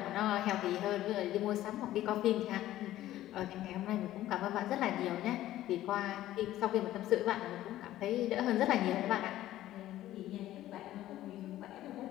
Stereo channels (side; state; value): right; quieter; 14.1 dB